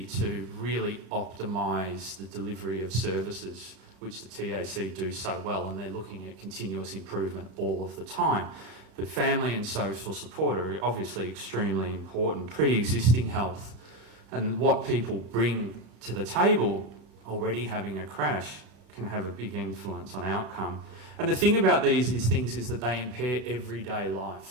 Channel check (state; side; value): late; left; 34 ms